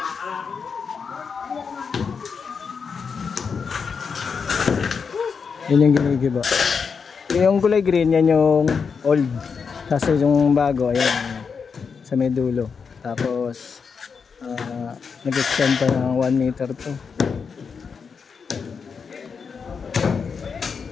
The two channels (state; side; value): quieter; right; 5.8 dB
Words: Yan yung ginigiba. Yung kulay green, yan yung old. Kasi yung bago, ayan, sa may dulo. Tapos, nag-extend pa ng 1 meter to.